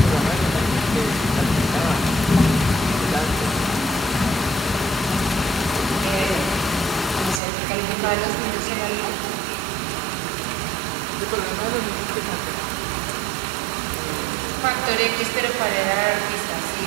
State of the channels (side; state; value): left; drops out; at 7.4 s